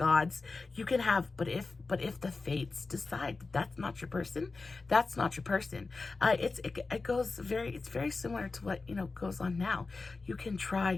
You can have, but if the fates decide that that's not your person, that's not your person. It's very similar to what goes on now. You can try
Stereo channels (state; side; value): quieter; right; 3.9 dB